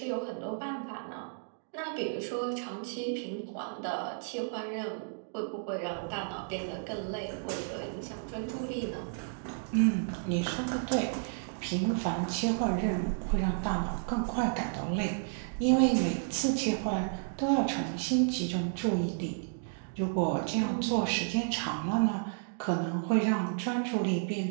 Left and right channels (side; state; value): left; silent; digital silence